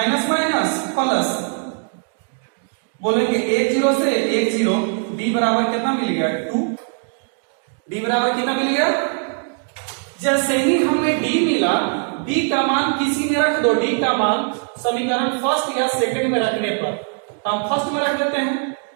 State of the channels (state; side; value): silent; left; 55 dB below the other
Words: माइनस प्लस, बोलेंगे 1 0 से 1 0, d बराबर कितना मिल गया 2। d बराबर कितना मिल गया? जैसे ही हमें d मिला, d का मान किसी में रख दो। d का मान समीकरण फर्स्ट या सेकंड में रखने पर, तो हम फर्स्ट में रख देते हैं।